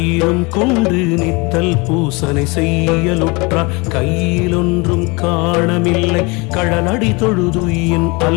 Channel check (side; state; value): right; quieter; 27.6 dB